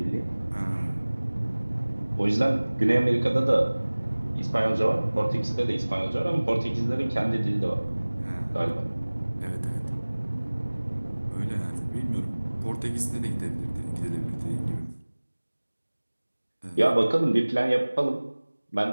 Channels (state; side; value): inverted; both; correlation -1.00